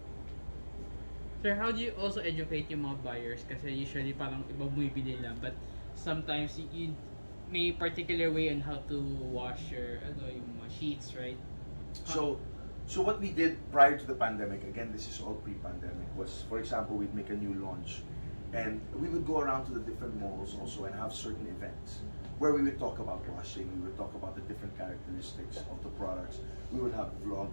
Sir, how do you also educate yung mga buyers? Kasi usually parang iba bumibili lang, but sometimes you may particular way on how to wash your yung mga sheets, right? So what we did prior to the pandemic, again, this is all pre-pandemic, was, for example, we'd make a new launch and we would go around to the different malls also and have certain events where we would talk about washing, we would talk about the different characteristics of the products. We would have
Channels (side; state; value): both; inverted; correlation -1.00